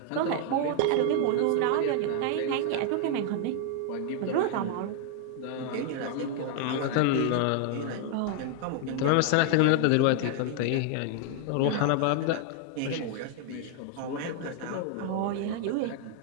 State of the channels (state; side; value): different; both; correlation 0.00